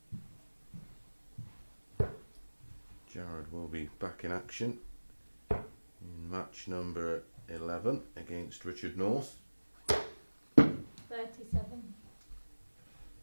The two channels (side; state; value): both; inverted; correlation -1.00